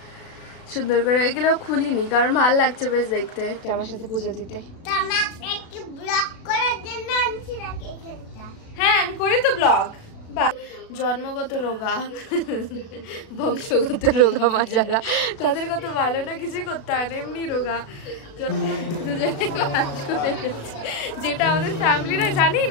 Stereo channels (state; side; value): late; right; 36 ms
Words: সুন্দর করে, এগুলো খুলিনি কারণ ভালো লাগছে বেশ দেখতে আমার সাথে পুজো দিতে। হ্যাঁ আমি করি তো ব্লগ। জন্মগত রোগা বংশগত রোগা মা যারা, তাদের কত ভালো না কিছুই করতে হয় না, এমনি রোগা যেটা আমাদের ফ্যামিলিরা জানি